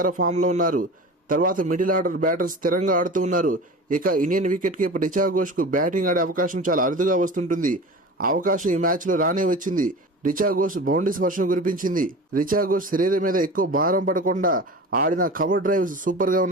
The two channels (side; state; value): both; normal; correlation 0.34